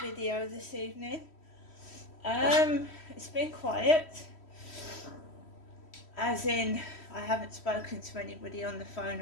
video this evening. It's been quiet, as in I haven't spoken to anybody on the phone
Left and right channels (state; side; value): late; right; 3.1 ms